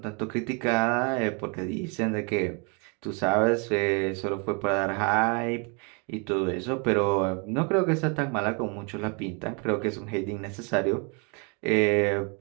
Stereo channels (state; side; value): quieter; left; 34.3 dB